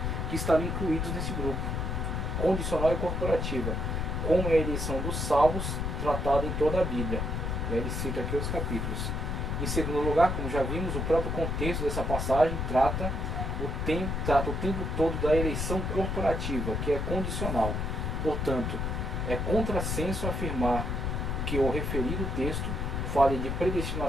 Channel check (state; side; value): noise; left; rumble, 1 dB below the sound